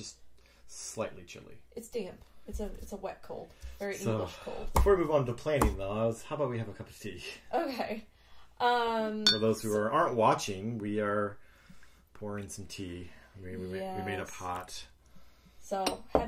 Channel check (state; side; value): identical; both; correlation 1.00